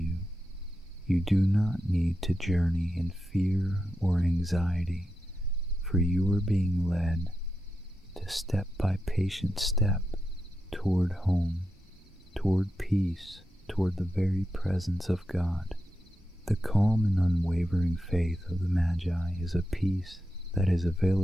You do not need to journey in fear or anxiety, for you are being led to step by patient step toward home, toward peace, toward the very presence of God. The calm and unwavering faith of the Magi is a peace that is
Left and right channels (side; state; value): both; normal; correlation 0.88